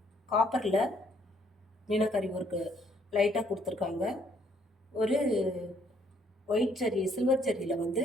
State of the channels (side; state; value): both; normal; correlation 0.67